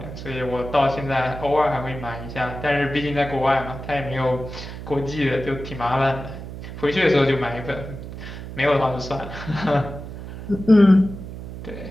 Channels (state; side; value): noise; right; hum, 10 dB below the sound